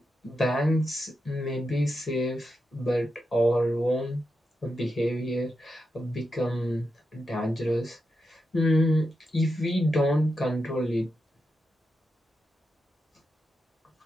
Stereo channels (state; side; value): normal; both; correlation 0.87